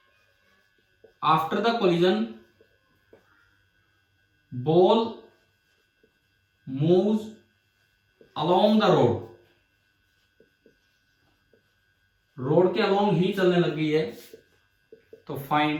after the collision ball moves along the road, road के अलोंग ही चलने लग गई है, तो फाइंड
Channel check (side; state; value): both; identical; correlation 1.00